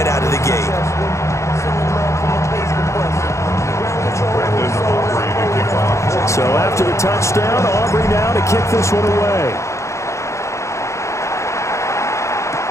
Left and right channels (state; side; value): late; right; 0.14 ms